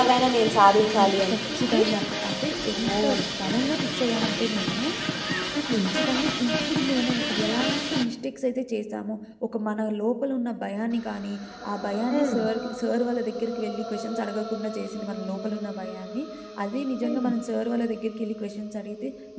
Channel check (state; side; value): identical; both; correlation 1.00